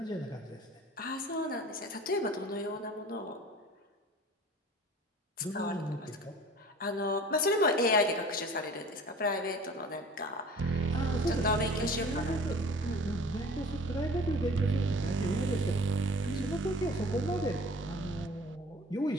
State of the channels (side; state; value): both; normal; correlation 0.44